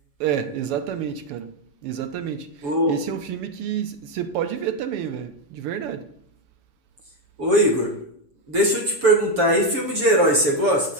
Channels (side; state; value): left; late; 7.1 ms